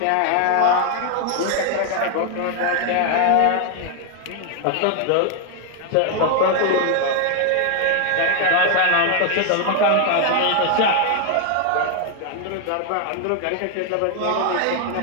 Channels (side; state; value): both; different; correlation 0.00